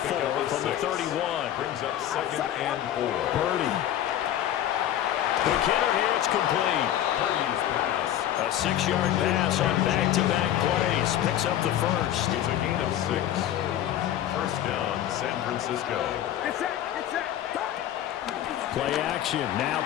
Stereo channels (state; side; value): quieter; right; 11.7 dB